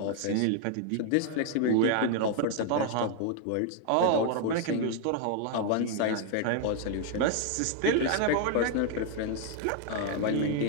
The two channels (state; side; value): different; both; correlation 0.00